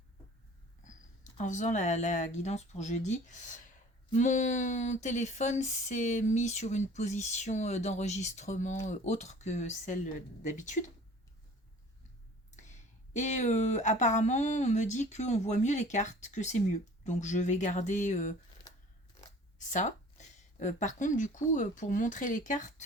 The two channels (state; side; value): normal; both; correlation 0.48